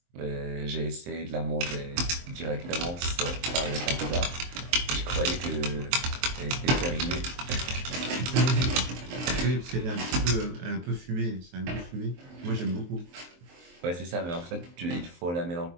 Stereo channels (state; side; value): late; left; 23 ms